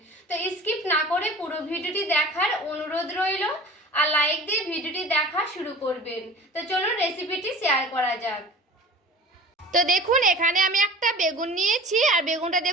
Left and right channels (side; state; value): both; normal; correlation 0.40